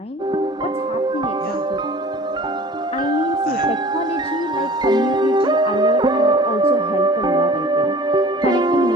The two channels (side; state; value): both; normal; correlation 0.45